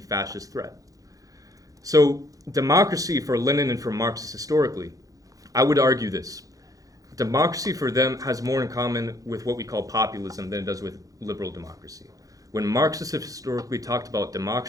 fascist threat. So democracy for Lenin and for Marxists historically, I would argue this. Democracy for them has more in common with what we call populism than it does with liberal democracy. When Marxists have historically talked about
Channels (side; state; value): left; late; 0.17 ms